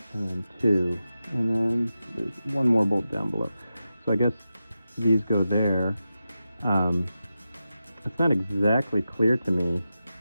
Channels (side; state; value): both; inverted; correlation -0.91